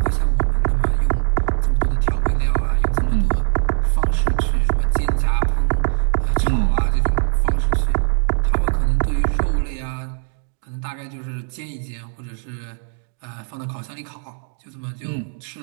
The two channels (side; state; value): left; silent; digital silence